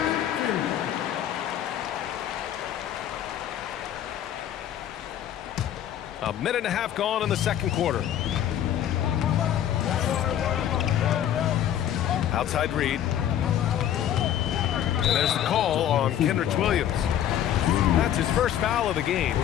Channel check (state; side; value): quieter; right; 10.8 dB